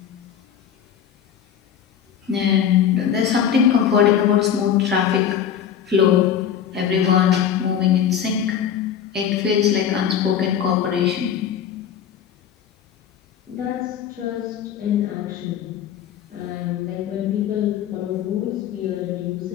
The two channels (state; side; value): quieter; right; 8.8 dB